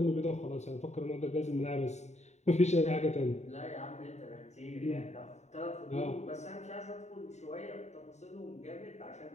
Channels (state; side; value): late; right; 0.33 ms